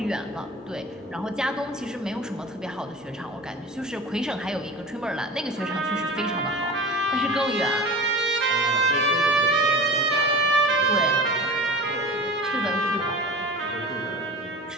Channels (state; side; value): normal; both; correlation 0.35